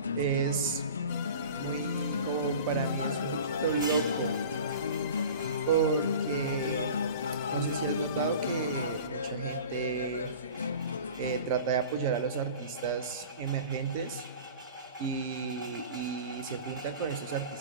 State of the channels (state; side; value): inverted; both; correlation -0.39